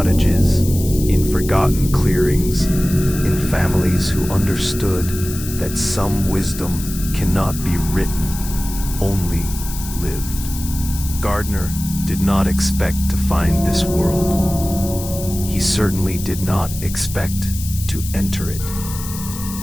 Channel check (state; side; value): noise; left; hiss, 11 dB below the sound